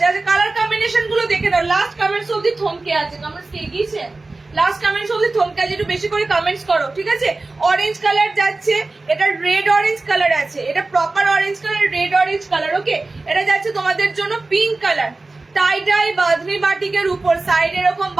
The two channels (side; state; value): left; quieter; 3.3 dB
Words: আচ্ছা কালার কম্বিনেশন গুলো দেখে দাও, লাস্ট কমেন্টস অবধি থমকে আছে, কমেন্টস কে গিয়েছে, লাস্ট কমেন্টস অবধি থমকে আছে, একটু বেশি করে কমেন্টস করো, ঠিক আছে। অরেঞ্জ কালার যাচ্ছে, এটা রেড অরেঞ্জ কালার আছে, এটা proper orange colour, red orange colour. Okay, এটা যাচ্ছে তোমাদের জন্য pink colour, tie dye bandhani বাটিকের উপর সাইড এরকম